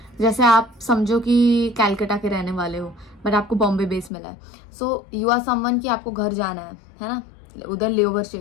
जैसे आप समझो कि कैलकाटा के रहने वाले हो बट आपको बॉम्बे बेस मिला है. सो यू आर समवन कि आपको घर जाना है ना, उधर लेओवर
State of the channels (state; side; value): drops out; right; at 4.1 s